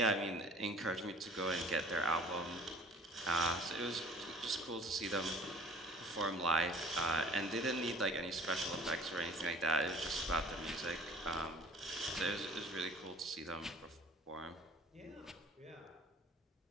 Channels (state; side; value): normal; both; correlation 0.48